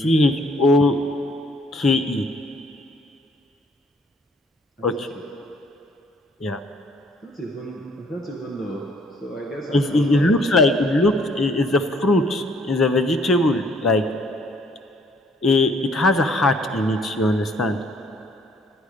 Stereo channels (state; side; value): normal; both; correlation 0.62